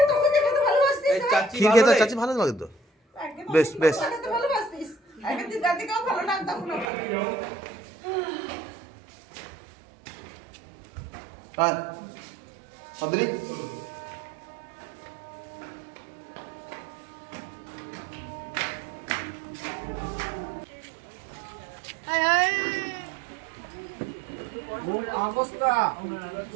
এই চাচি ক্ষীর ভালো খেতে রে? চাচ্ছি ভালো লাগে তো, বেশ বেশ। হ্যাঁ অদ্রি, মূল অবস্থা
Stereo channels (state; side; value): drops out; left; at 6.9 s